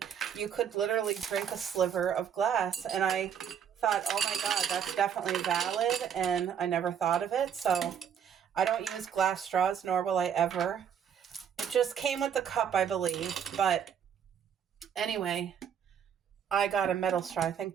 you could literally drink a sliver of glass. And I thought, oh my God, that's definitely valid. And I never thought of it. So I don't use glass straws, nor will I ever. It just came with the cup, I believe. But anyway, I got a metal straw, I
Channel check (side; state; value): left; quieter; 8.2 dB